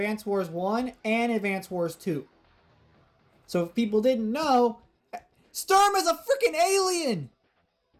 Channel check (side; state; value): both; identical; correlation 1.00